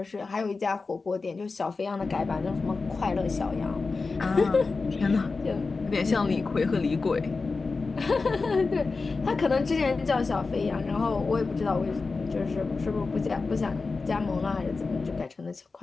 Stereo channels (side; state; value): right; quieter; 4.1 dB